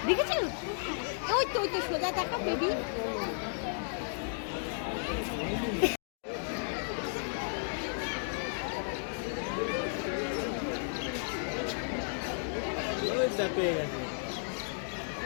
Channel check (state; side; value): silent; right; digital silence